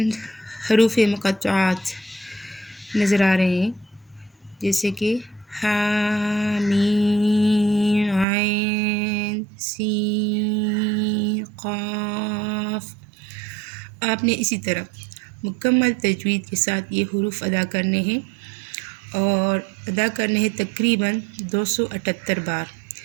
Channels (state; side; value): drops out; left; at 8.2 s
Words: حروف مقطعات نظر آ رہے ہیں، جیسے کہ ح م ع س ق۔ آپ نے اسی طرح مکمل تجوید کے ساتھ یہ حروف ادا کرنے ہیں، اور ادا کرنے ہیں تقریباً 278 بار،